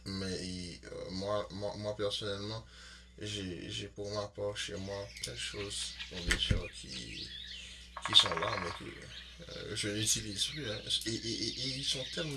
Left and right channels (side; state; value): both; identical; correlation 1.00